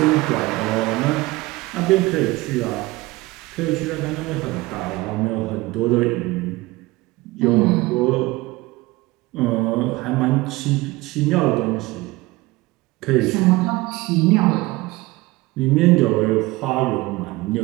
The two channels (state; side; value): quieter; left; 20.5 dB